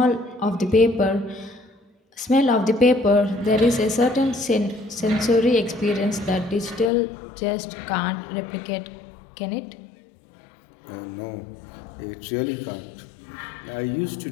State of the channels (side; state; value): right; drops out; at 6.9 s